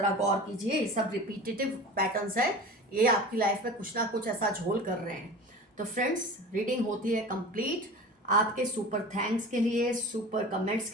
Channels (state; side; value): normal; both; correlation 0.36